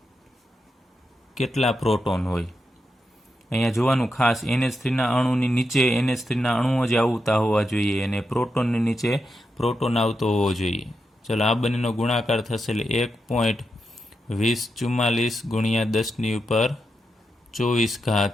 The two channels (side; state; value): both; normal; correlation 0.86